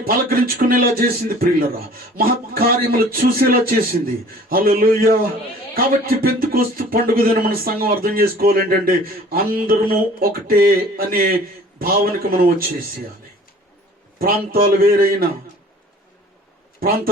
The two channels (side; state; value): both; normal; correlation 0.49